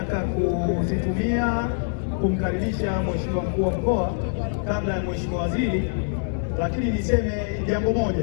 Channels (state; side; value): silent; right; digital silence